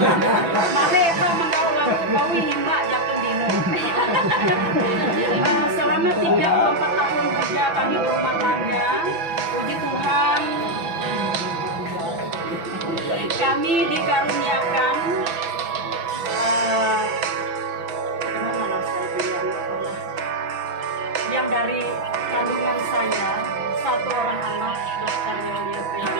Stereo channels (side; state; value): left; late; 6.0 ms